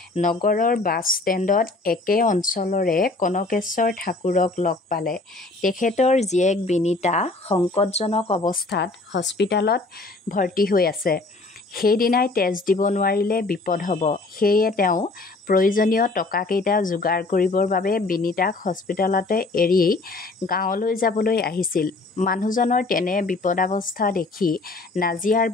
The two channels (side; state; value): right; quieter; 3.3 dB